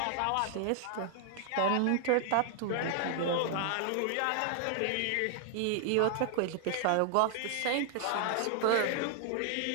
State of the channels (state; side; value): different; both; correlation 0.00